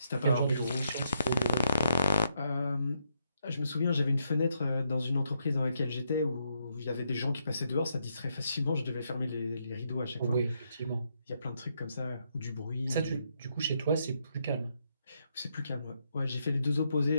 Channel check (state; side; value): inverted; both; correlation -0.78